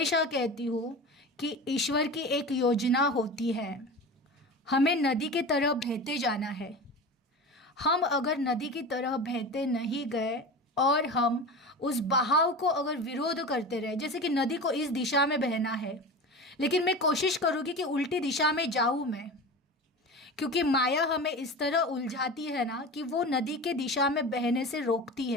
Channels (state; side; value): normal; both; correlation 0.30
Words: कहती हूँ कि ईश्वर की एक योजना होती है, हमें नदी की तरह बहते जाना है। हम अगर नदी की तरह बहते नहीं गए और हम उस बहाव को अगर विरोध करते रहे, जैसे कि नदी को इस दिशा में बहना है लेकिन मैं कोशिश करूँगी कि उल्टी दिशा में जाऊँ मैं, क्योंकि माया हमें इस तरह उलझाती है ना कि वो नदी के दिशा में बहने से रोकती